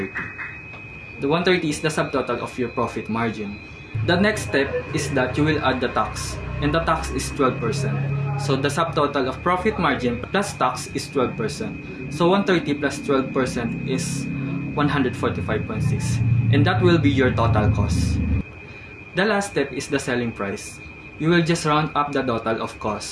The 130 is the subtotal of your profit margin. The next step is that you will add the tax, and the tax is 12%. So the subtotal of profit margin plus tax is 12%. So 130 plus 12% is 145.6, and that will be your total cost. The last step is the selling price. You will just round up the total of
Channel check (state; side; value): identical; both; correlation 1.00